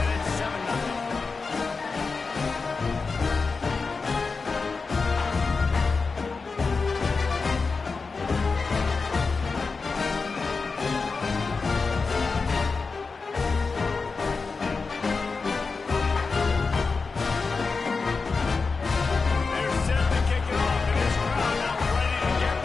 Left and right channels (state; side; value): quieter; right; 4.4 dB